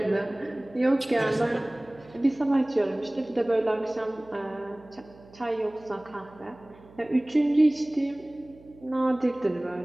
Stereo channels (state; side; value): noise; right; hum, 23 dB below the sound